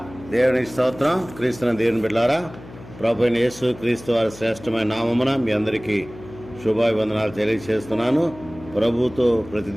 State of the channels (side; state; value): left; noise; hum, 18 dB below the sound